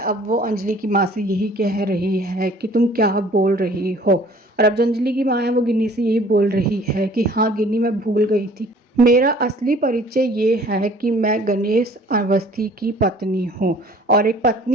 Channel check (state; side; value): normal; both; correlation 0.52